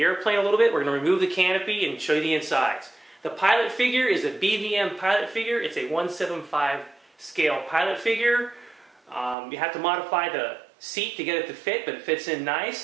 airplane a little bit. We're going to remove the canopy and show you the insides. The pilot figure is a BVM pilot figure. It's a 1/75 scale pilot figure. You have to modify the seat to get it to fit, but it fits in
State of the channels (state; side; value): drops out; left; at 9.3 s